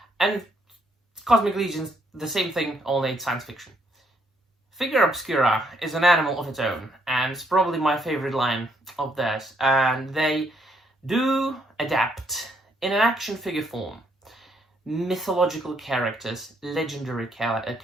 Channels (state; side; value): normal; both; correlation 0.72